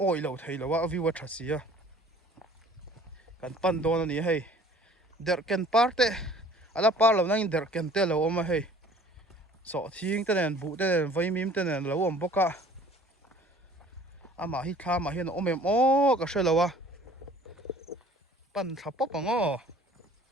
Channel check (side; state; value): both; normal; correlation 0.51